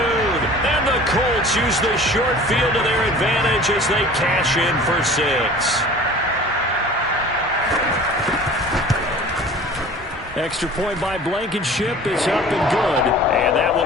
And the Colts use the short field to their advantage as they cash in for 6. Extra point by Blankenship is up and good. And that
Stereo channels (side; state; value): both; normal; correlation 0.44